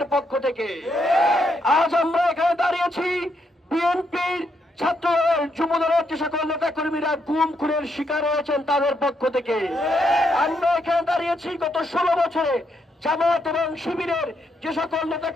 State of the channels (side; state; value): both; normal; correlation 0.77